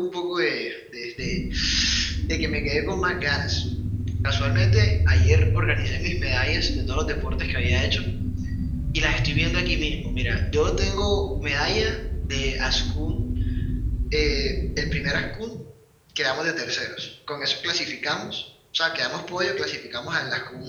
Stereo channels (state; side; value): identical; both; correlation 1.00